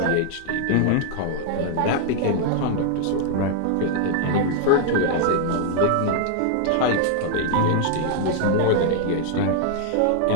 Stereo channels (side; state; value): both; different; correlation 0.00